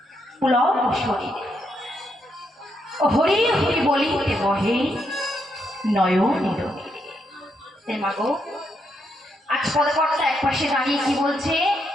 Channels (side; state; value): both; normal; correlation 0.79